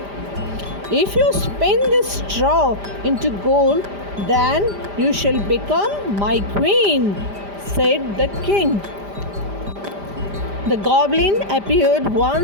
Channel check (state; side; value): late; left; 5.0 ms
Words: "If you spin this straw into gold, then you shall become my queen," said the king. The goblin appeared